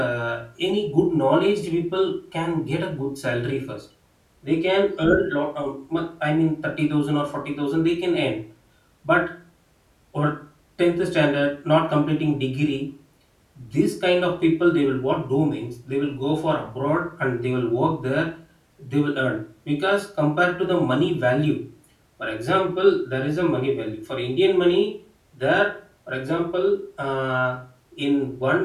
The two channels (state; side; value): identical; both; correlation 1.00